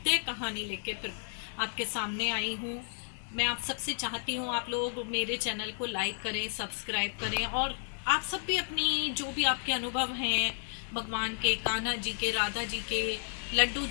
कहानी लेके फिर आपके सामने आई हूँ। मैं आप सबसे चाहती हूँ आप लोग मेरे चैनल को लाइक करें, सब्सक्राइब करें और आप सब भी अपनी जो भी आपके अनुभव हैं भगवान के, कान्हा जी के, राधा जी के, लड्डू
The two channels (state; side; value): silent; right; digital silence